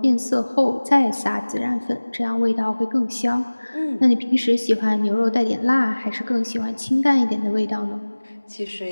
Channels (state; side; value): inverted; both; correlation -1.00